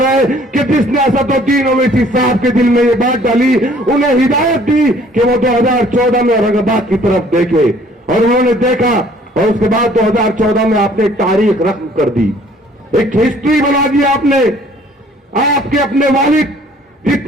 है कि जिसने असदुद्दीन ओवैसी साहब के दिल में ये बात डाली, उन्हें हिदायत दी कि वो 2014 में औरंगाबाद की तरफ देखे, और उन्होंने देखा, और उसके बाद 2014 में आपने एक तारीख रकम कर दी, एक हिस्ट्री बना दी आपने। आपके अपने वालिद,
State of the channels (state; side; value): normal; both; correlation 0.57